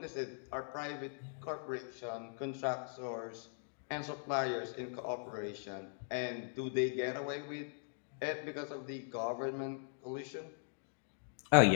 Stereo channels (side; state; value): right; silent; digital silence